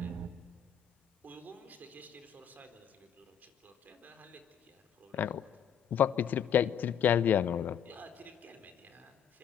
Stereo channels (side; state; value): right; quieter; 8.4 dB